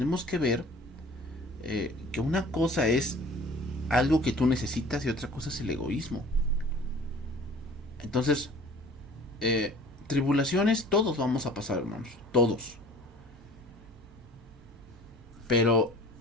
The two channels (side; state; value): both; normal; correlation 0.48